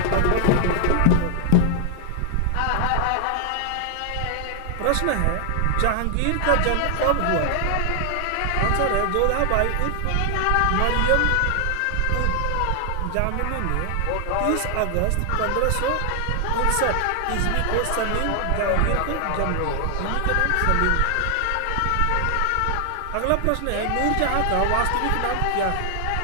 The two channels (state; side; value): different; both; correlation 0.00